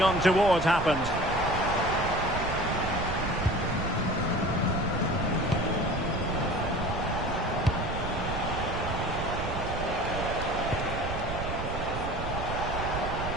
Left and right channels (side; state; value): right; noise; rumble, 5 dB below the sound